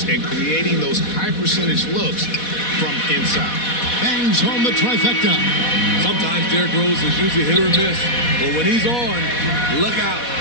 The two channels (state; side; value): late; right; 4.1 ms